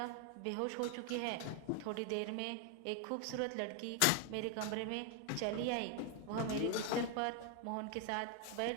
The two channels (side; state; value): both; different; correlation 0.01